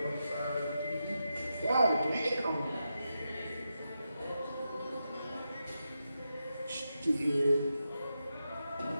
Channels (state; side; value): inverted; both; correlation -0.87